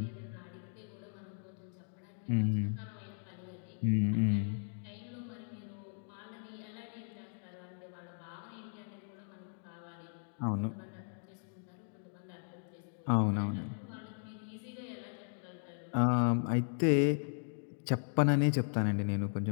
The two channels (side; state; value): right; silent; 53 dB below the other